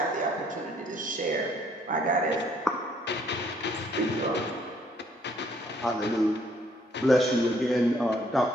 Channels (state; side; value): normal; both; correlation 0.65